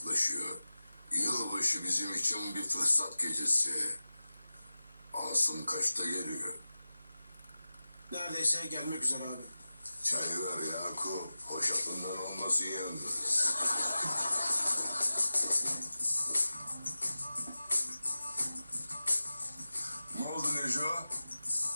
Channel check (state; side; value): inverted; both; correlation -0.96